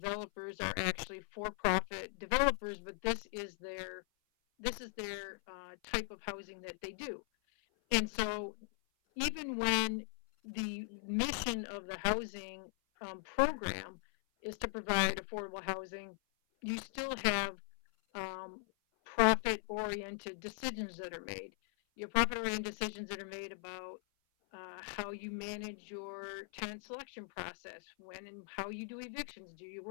are actually for-profit developers, but this is their type of housing that they do. And so even when the mission of the housing program is to provide affordable housing, you still have profit-oriented decisions that are made. Your profit-oriented decisions that are made about how you manage your tenant selection process, when and how you do evictions. Do you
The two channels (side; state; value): right; silent; 51 dB below the other